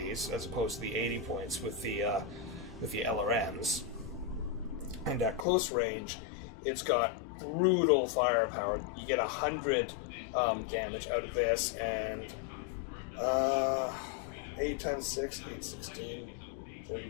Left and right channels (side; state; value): right; drops out; at 5.5 s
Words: as opposed to the 80 points with the LRMs. And at close range, it's got brutal firepower. You get 100 damage out of this, and 8 times 6, 8, 16,